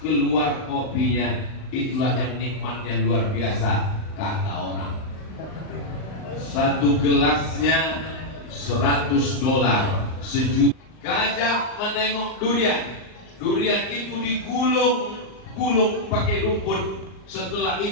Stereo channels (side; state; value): right; late; 38 ms